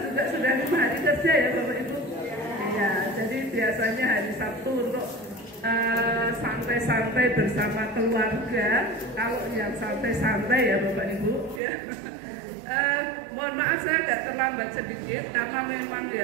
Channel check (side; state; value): left; drops out; at 11.6 s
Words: juga sudah 5 hari kerja ya Bapak Ibu. Ya, jadi biasanya hari Sabtu untuk santai-santai bersama keluarga. Kalau yang santai-santai ya Bapak Ibu ya. Mohon maaf saya agak terlambat sedikit karena memang